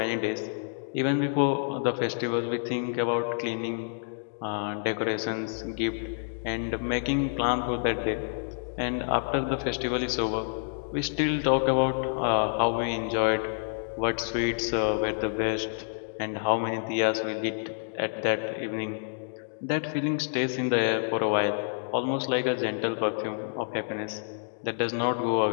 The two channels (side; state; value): right; silent; digital silence